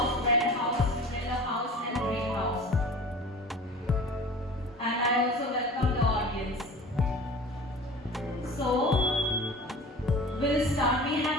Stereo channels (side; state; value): both; normal; correlation 0.40